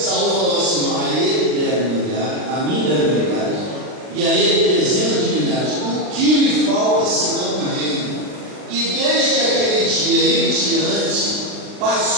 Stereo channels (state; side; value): late; left; 39 ms